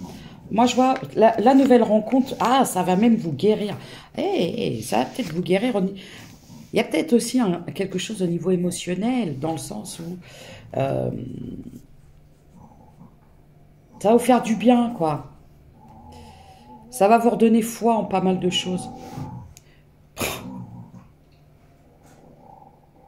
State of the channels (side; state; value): both; identical; correlation 1.00